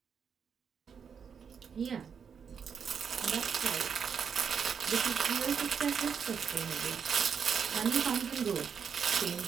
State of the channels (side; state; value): left; quieter; 6.9 dB